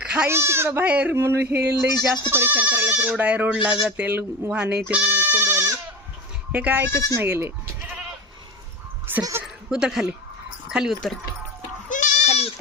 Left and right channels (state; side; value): normal; both; correlation 0.27